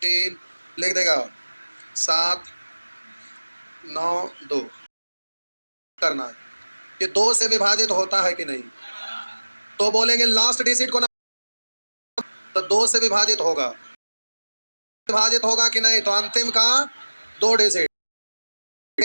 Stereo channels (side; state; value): both; inverted; correlation -1.00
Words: लिख देगा, 792 करना है, ये 2 से विभाजित होता है कि नहीं। तो बोलेंगे लास्ट डिजिट को ना, तो 2 से विभाजित होगा, विभाजित होगा कि नहीं। तो अंतिम का 2 डिजिट,